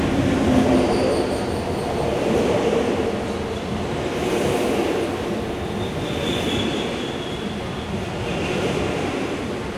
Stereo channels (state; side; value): identical; both; correlation 1.00